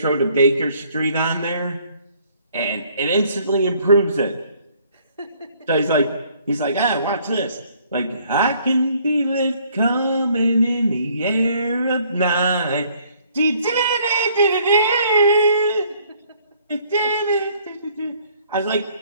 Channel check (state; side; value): inverted; both; correlation -0.62